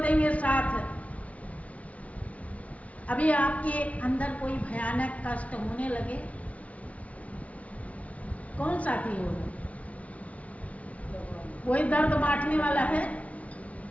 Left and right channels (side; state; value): right; late; 0.066 ms